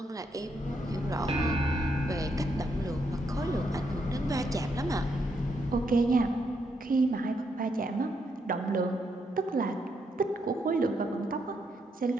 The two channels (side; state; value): both; normal; correlation 0.78